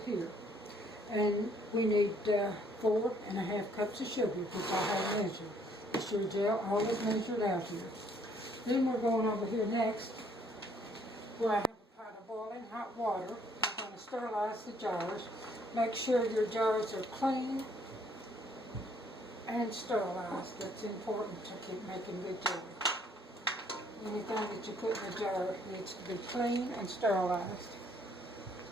And we need 4 1/2 cups of sugar, which I have measured. The Sure Gel, all is measured out here. Then we're going over here next, where I have a pot of boiling hot water. I'm going to sterilize the jars. Make sure your jars are clean and sterilized. That's important to keep making good jelly. Anything that you put in the jar needs to be clean and sterilized.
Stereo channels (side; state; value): both; normal; correlation 0.65